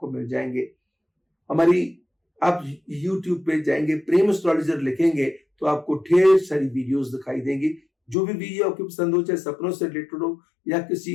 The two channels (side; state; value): right; drops out; at 8.2 s